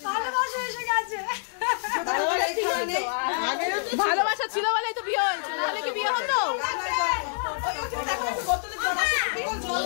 ভালোবাসা ছিল বলেই তো বিয়ে হয়েছে, না হলে কি বিয়ে হতো?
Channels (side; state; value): right; silent; 60 dB below the other